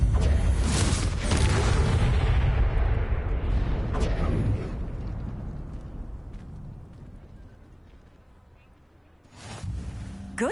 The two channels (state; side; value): identical; both; correlation 1.00